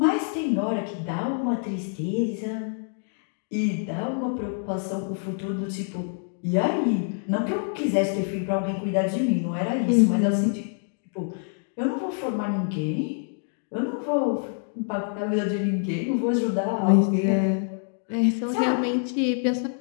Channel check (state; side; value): silent; right; 55 dB below the other